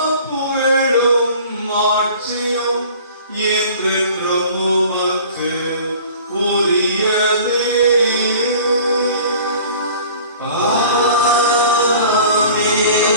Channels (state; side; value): inverted; both; correlation -0.46